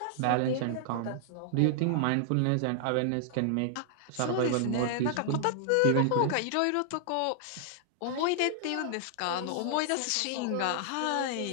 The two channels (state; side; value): different; both; correlation -0.01